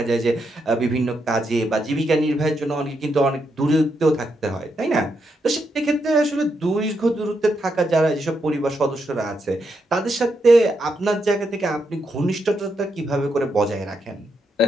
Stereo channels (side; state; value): both; normal; correlation 0.81